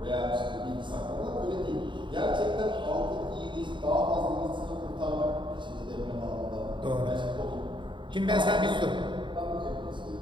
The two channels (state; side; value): late; left; 0.23 ms